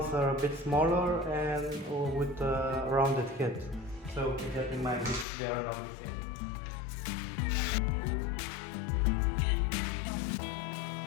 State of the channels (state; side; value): drops out; right; at 5.2 s